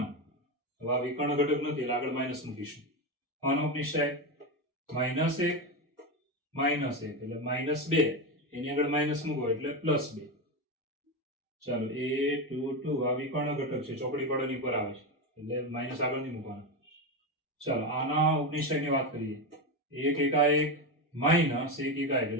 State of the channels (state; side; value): normal; both; correlation 0.14